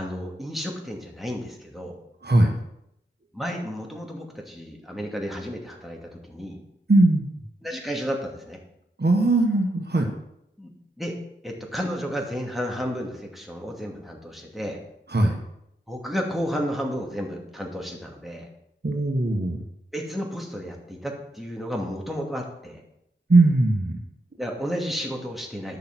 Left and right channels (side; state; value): both; normal; correlation 0.84